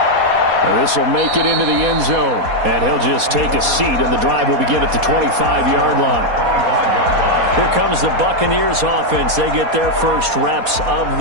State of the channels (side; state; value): left; late; 4.2 ms